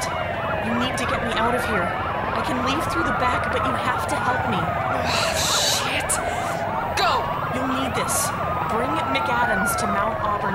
You need to get me out of here. I can leave through the back, but you have to help me. Oh, shit! Go! You'll need this. Bring McAdams to Mount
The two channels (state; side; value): identical; both; correlation 1.00